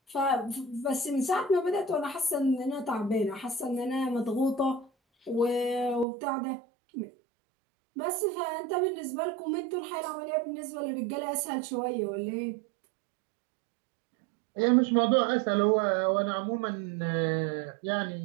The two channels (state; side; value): drops out; left; at 6.1 s